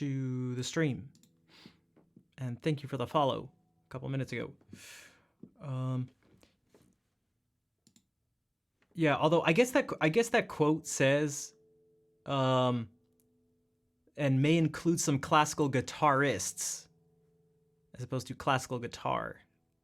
the stream. And thank you for the follow a couple minutes ago. Yeah, although I guess that quote says and may include some classical guitarists as opposed to classical guitar.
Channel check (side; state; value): both; identical; correlation 1.00